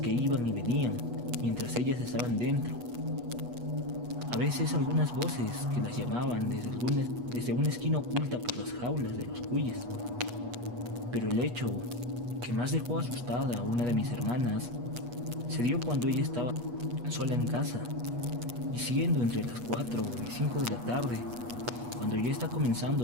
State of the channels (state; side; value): late; left; 8.3 ms